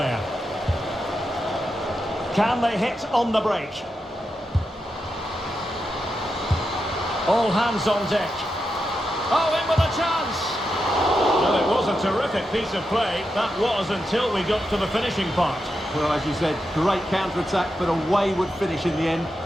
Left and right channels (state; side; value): normal; both; correlation 0.87